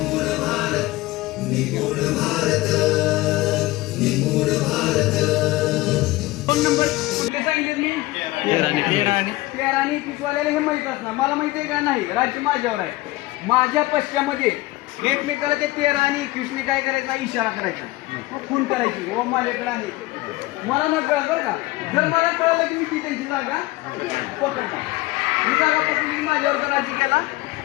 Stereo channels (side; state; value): right; quieter; 19.3 dB